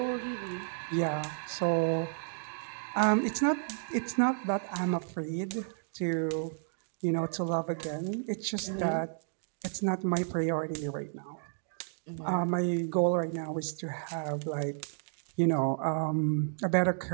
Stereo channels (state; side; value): silent; left; digital silence